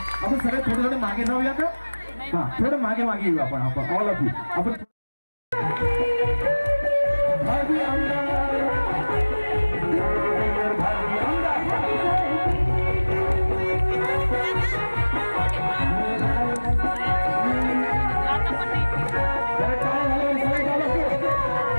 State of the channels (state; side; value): inverted; both; correlation -1.00